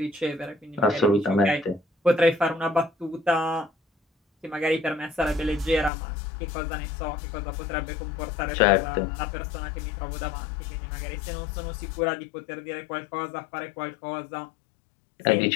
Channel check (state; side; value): drops out; right; at 5.9 s